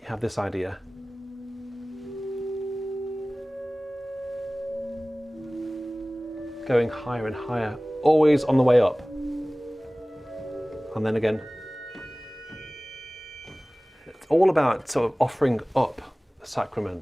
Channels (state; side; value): normal; both; correlation 0.98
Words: have this idea. Going higher and higher, always on the way up. And then again. It's all about sort of offering up the